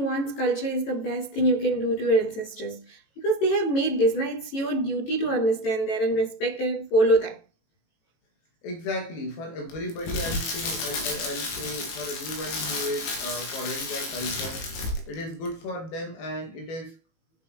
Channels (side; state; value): right; late; 18 ms